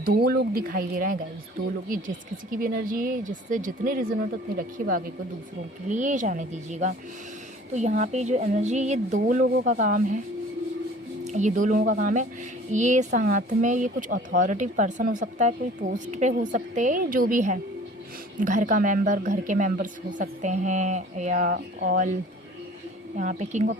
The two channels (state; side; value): normal; both; correlation 0.48